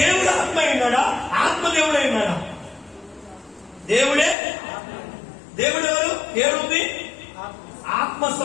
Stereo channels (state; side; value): drops out; right; at 4.4 s